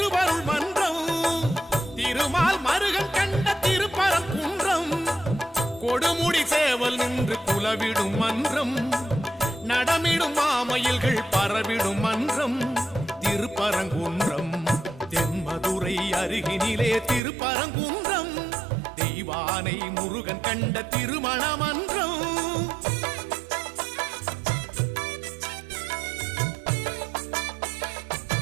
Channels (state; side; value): drops out; left; at 17.2 s